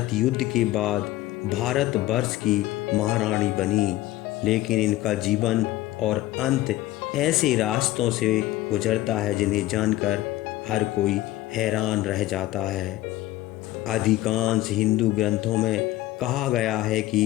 युद्ध के बाद भारत वर्ष की महारानी बनी, लेकिन इनका जीवन और अंत ऐसे रास्तों से गुजरता है जिन्हें जानकर हर कोई हैरान रह जाता है। अधिकांश हिंदू ग्रंथों में कहा गया है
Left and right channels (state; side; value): quieter; right; 16.1 dB